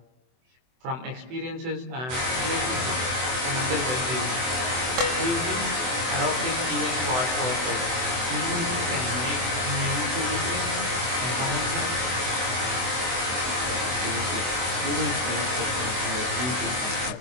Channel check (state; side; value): late; left; 24 ms